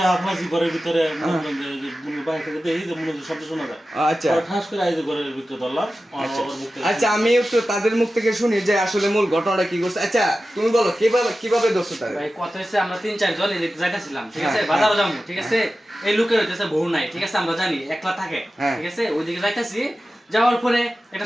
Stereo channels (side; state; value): both; normal; correlation 0.94